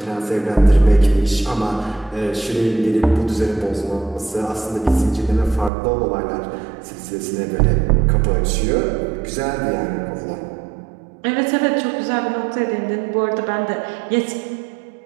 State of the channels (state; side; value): drops out; left; at 5.7 s